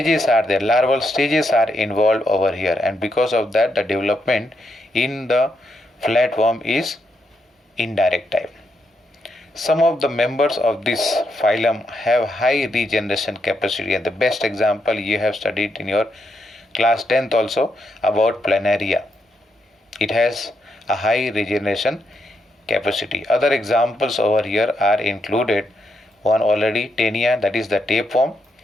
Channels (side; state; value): both; normal; correlation 0.80